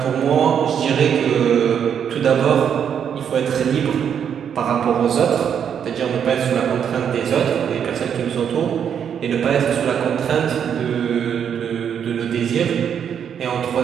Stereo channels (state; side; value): quieter; left; 8.2 dB